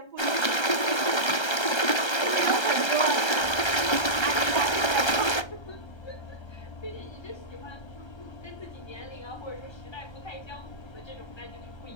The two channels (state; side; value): late; right; 1.3 ms